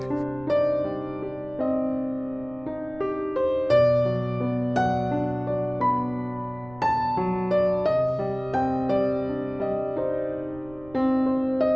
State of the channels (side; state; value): right; noise; rumble, 22 dB below the sound